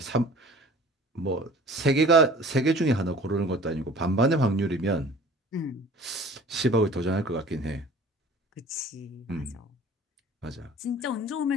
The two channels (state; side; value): normal; both; correlation 0.46